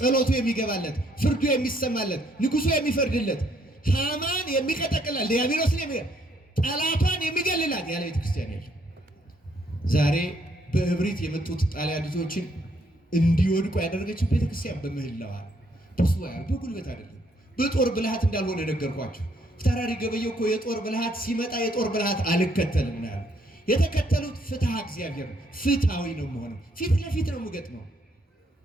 የሚገባለት፣ ፍርዱ የሚሰማለት፣ ንጉሱ የሚፈርድለት፣ ሃማን የሚቀጠቅላት፣ ዲያብሎስን ጠላቷን የሚገልላት ያለ ቤተ ክርስቲያን የለም። ዛሬ በእብሪት የመጡት ጣሊያኖችን እንዲወድቁ ያደረገችው ቤተ ክርስቲያን በምህላዋ በጉልበት አይደለም፣ በጦር ብልሃት እንዳልሆነ ነገርኳቸው። ፊታውራሪ ገበየሁ እኮ የጦር ብልሃት ሲመጣ የጦር ብልሃት አልከተልም ነው ያለው። የተከተሉት ፍትሐ እግዚአብሔር ነው። ፍትሐዊ ነው መሆኑ፣ ፊት ለፊት ነው የምገጥመው።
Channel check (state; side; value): normal; both; correlation 0.70